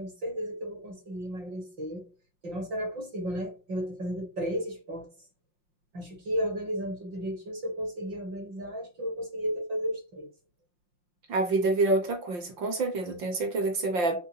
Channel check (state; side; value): late; left; 5.8 ms